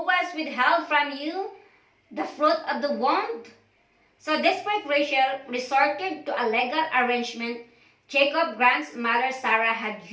was withheld from you the fruit of the womb?" So desperate Rachel resorted to a legal arrangement Jacob's grandmother Sarah had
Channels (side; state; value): both; identical; correlation 1.00